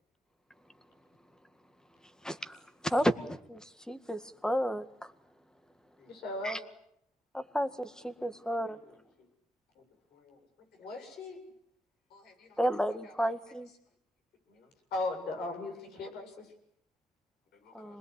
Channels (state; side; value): normal; both; correlation 0.86